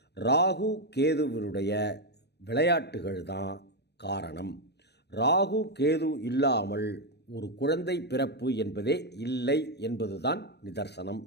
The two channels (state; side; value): late; right; 0.49 ms